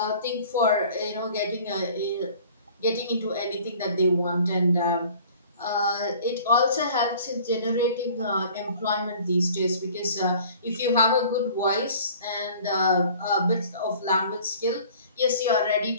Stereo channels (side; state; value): both; inverted; correlation -0.49